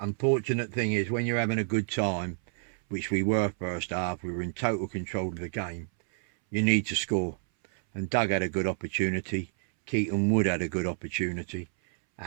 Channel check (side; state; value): left; silent; 59 dB below the other